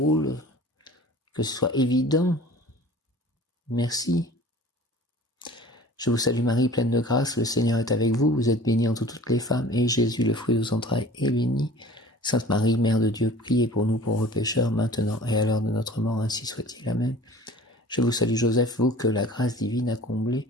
que ce soit évident. Merci. Je vous salue Marie, pleine de grâce, le Seigneur est avec vous, vous êtes bénie entre toutes les femmes, et Jésus, le fruit de vos entrailles, est béni. Sainte Marie, Mère de Dieu, priez pour nous pauvres pécheurs, maintenant et à l'heure de notre mort, ainsi soit-il. Amen. Je vous salue Joseph, vous que la grâce divine a comblé,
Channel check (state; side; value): normal; both; correlation 0.45